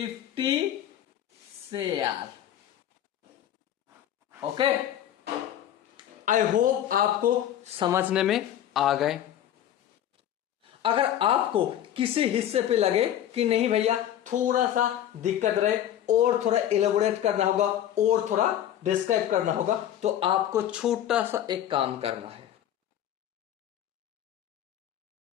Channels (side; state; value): right; quieter; 11.2 dB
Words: share. Okay, I hope आपको समझने में आ गए। अगर आपको किसी हिस्से पे लगे कि नहीं भैया थोड़ा सा दिक्कत रहे और थोड़ा एलोबोरेट करना होगा और थोड़ा डिस्क्राइब करना होगा, तो आपको छोटा सा एक काम करना है।